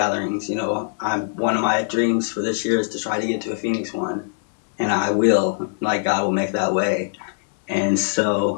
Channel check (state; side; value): silent; right; digital silence